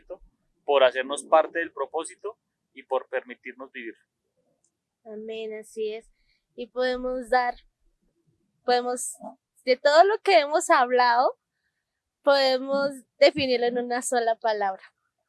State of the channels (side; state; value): both; identical; correlation 1.00